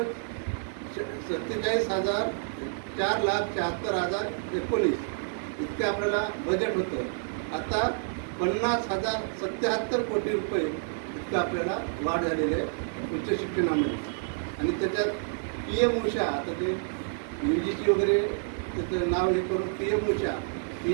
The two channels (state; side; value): silent; left; digital silence